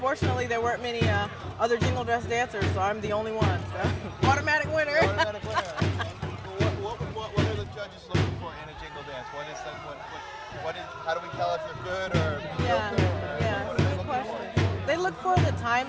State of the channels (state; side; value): identical; both; correlation 1.00